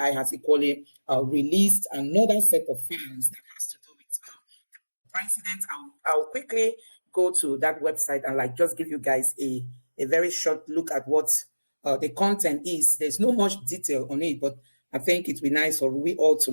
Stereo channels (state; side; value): inverted; both; correlation -1.00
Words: has equally released another set of files that has to do with president. I'll quickly go to that website and just give you guys a very short look at what the content is. There's no much detail on it, but I think it'd be nice for we all